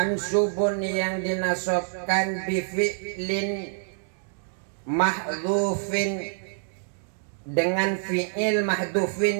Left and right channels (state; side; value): silent; left; digital silence